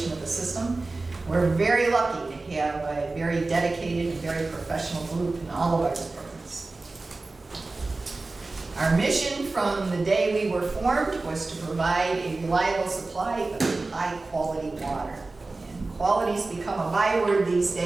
of the system. We're very lucky to have a very dedicated and very professional group in all of our departments. Our mission from the day we were formed was to provide a reliable supply of high-quality water. And quality's become a byword these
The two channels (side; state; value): left; quieter; 3.4 dB